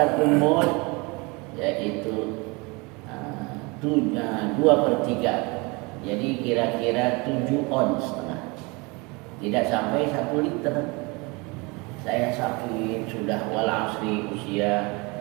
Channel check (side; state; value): left; quieter; 27.4 dB